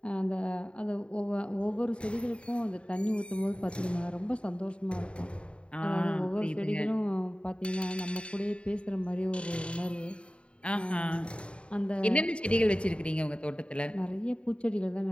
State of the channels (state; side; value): late; right; 0.057 ms